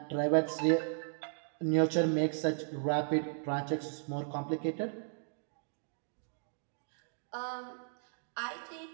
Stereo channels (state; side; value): silent; left; digital silence